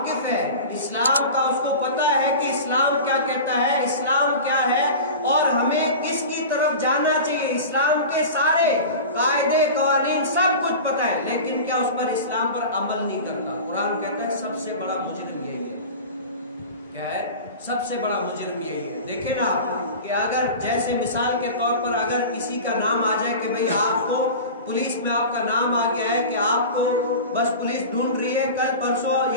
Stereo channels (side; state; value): both; inverted; correlation -0.33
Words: है, इस्लाम का उसको पता है कि इस्लाम क्या कहता है, इस्लाम क्या है और हमें किसकी तरफ जाना चाहिए। इस्लाम के सारे कायदे कवानीन सब कुछ पता है, लेकिन क्या उस पर इस्लाम पर अमल नहीं करता। कुरान कहता है सबसे बड़ा मुजरिम यही है। क्या है? सबसे बड़ा मुजरिम यही है। देखें ना आप कि अगर जैसे मिसाल के तौर पर अगर किसी का नाम आ जाए कि भाई आपको पुलिस में आपका नाम आ गया है कि आपको बस पुलिस ढूंढ रही है, कल परसों